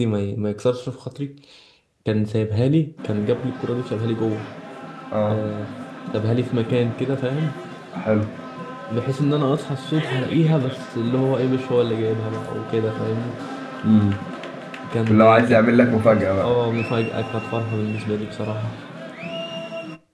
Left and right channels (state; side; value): identical; both; correlation 1.00